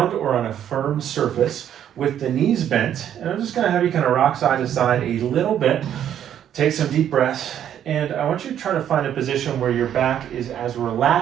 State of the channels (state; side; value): quieter; left; 10.1 dB